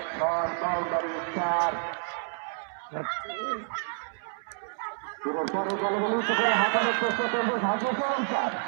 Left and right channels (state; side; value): silent; left; 59 dB below the other